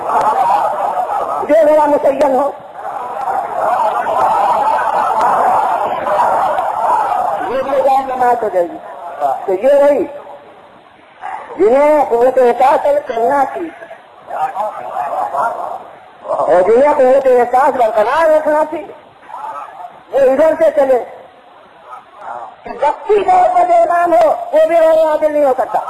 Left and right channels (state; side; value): identical; both; correlation 1.00